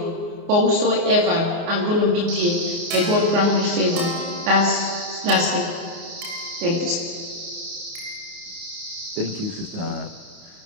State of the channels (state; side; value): late; left; 29 ms